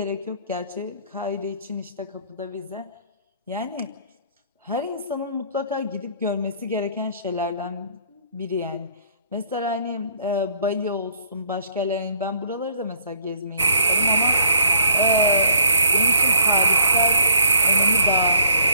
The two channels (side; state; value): both; inverted; correlation -0.60